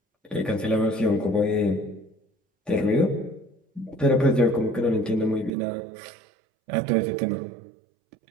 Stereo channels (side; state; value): left; drops out; at 5.5 s